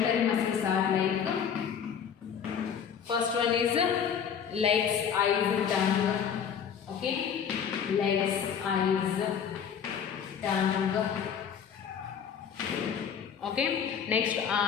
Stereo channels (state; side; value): quieter; right; 7.7 dB